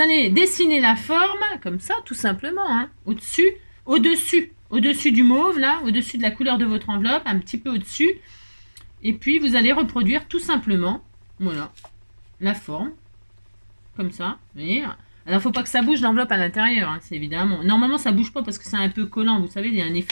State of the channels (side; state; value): both; inverted; correlation -1.00